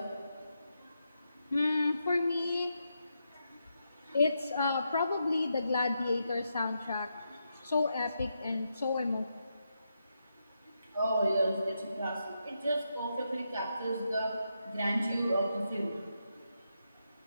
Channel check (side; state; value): both; inverted; correlation -0.84